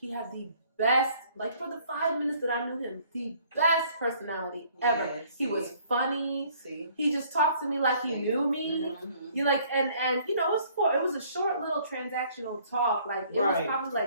had the best, like, for the 5 minutes that I knew him, the best personality ever. Yeah, he was funny. See? He just talked to me like he knew me. You like, and you know, it was a short little transactional talk. Like, it was probably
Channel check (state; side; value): inverted; both; correlation -0.60